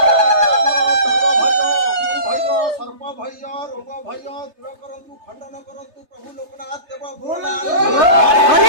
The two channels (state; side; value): late; left; 3.3 ms